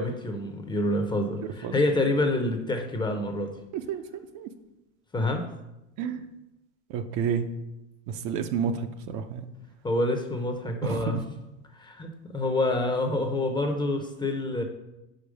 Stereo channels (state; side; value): normal; both; correlation 0.43